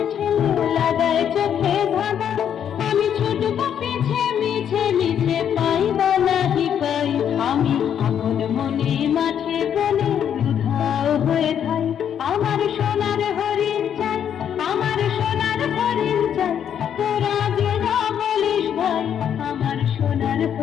ঠেলে লাগায় চোখে ধাঁধা। আমি ছুটব পিছে মিছে মিছে পাই বা নাহি পাই, আমি আপন মনে মাঠে বলে উধাও হয়ে থাই, আমার সোনার হরিণ চাই, আমার সোনার হরিণ চাই, তোরা যে যা বলিস ভাই আমার সোনার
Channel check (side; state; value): right; quieter; 9.0 dB